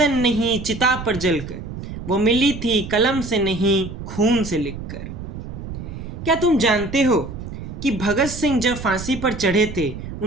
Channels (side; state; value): right; noise; rumble, 9 dB below the sound